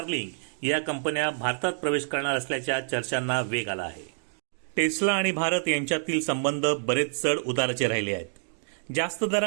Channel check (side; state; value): left; silent; digital silence